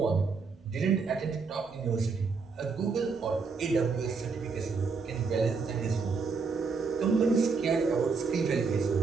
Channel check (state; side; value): quieter; left; 4.9 dB